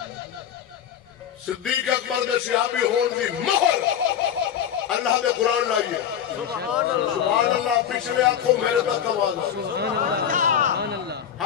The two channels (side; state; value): right; quieter; 9.2 dB